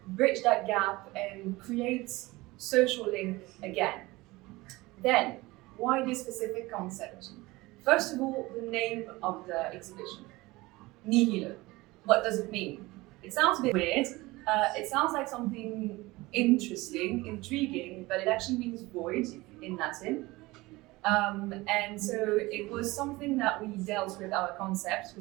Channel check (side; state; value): left; quieter; 21.0 dB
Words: bridge that gap and create social link again. Then, why this specific concept? First of all, the name of the exhibition, Nihilo. What does it mean? It sounds a bit weird. It sounds like something interesting, intriguing, but it actually means void in Latin. And so it was something that we dealt with our concepts,